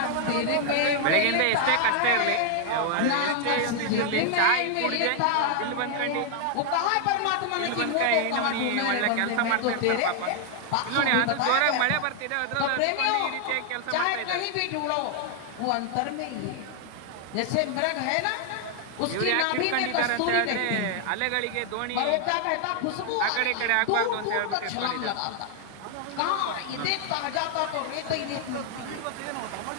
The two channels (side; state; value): both; different; correlation 0.00